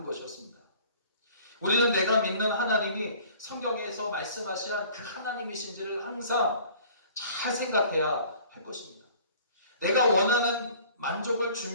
것이었습니다. 우리는 내가 믿는 하나님이 성경에서 말씀하신 그 하나님이신지를 항상 잘 생각해야 할 것입니다. 내가 원하는 만족을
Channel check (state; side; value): inverted; both; correlation -0.50